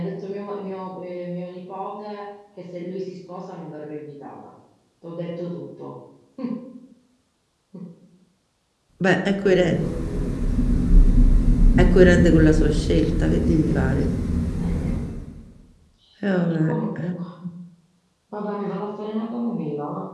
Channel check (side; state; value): both; identical; correlation 1.00